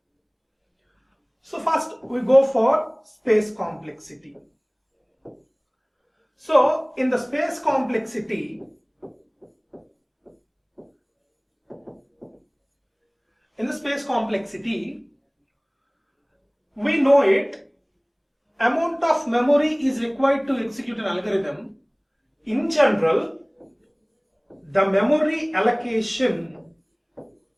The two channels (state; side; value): identical; both; correlation 1.00